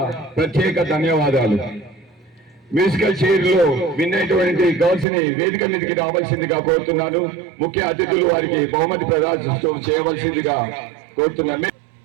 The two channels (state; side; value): drops out; left; at 5.1 s